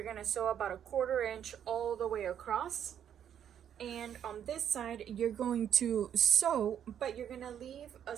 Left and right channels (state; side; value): quieter; left; 9.3 dB